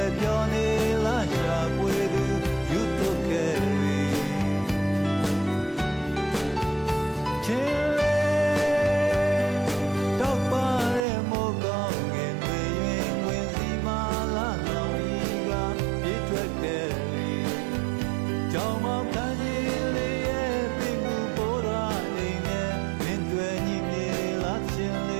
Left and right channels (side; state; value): left; drops out; at 11.1 s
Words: ေ့ပြောနေလာရှာပွေသူယူတုခဲချင်းလေတော့ပါရဲ့မိုးကောင်းငယ်တွေရင်ဝင်စီမာလာလောင်ရီကပြေးထွက်ခဲ့ကြောင်မောင်ခန်းကြီးလေးရဲ့ပြင်မှုပေါ်လာနေနဲ့မင်းတွေ့ညီနေလာချင်းလ